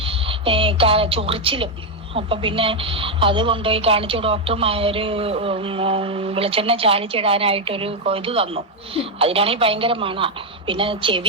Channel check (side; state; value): both; normal; correlation 0.02